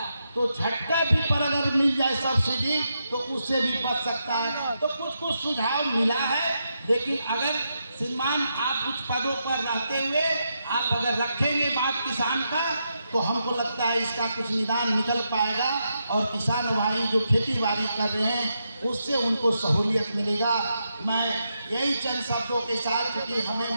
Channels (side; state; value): both; inverted; correlation -0.84